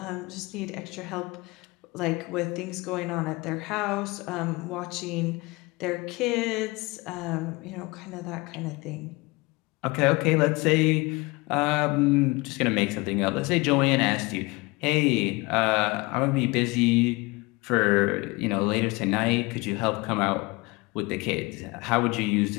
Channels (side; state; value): right; quieter; 24.5 dB